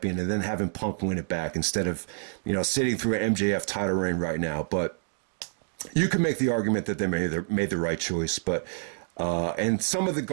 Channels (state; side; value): silent; left; digital silence